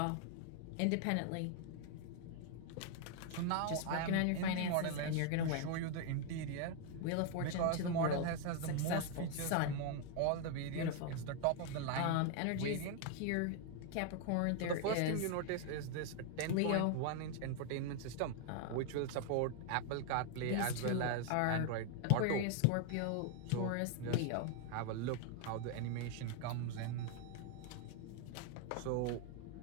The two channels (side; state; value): both; different; correlation 0.00